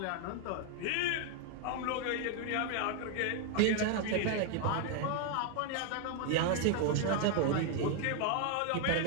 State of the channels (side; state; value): both; different; correlation 0.00